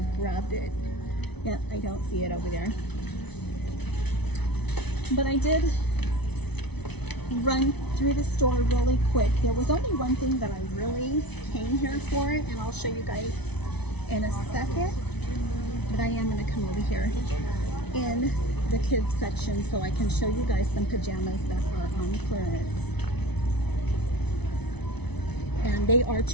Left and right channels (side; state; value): right; late; 0.99 ms